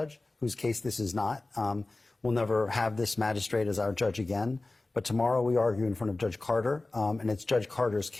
whose case this is not. We'll never have this magistrate as our judge again. But tomorrow we argue in front of Judge Carter, and it's Judge Carter's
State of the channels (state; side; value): quieter; right; 3.1 dB